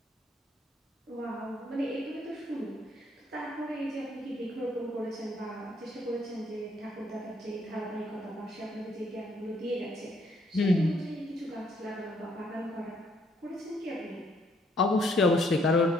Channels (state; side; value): normal; both; correlation 0.69